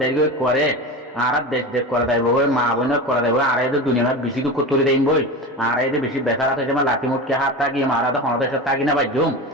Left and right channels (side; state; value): both; normal; correlation 0.27